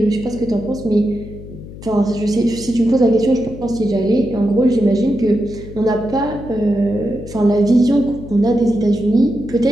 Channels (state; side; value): noise; left; hum, 14 dB below the sound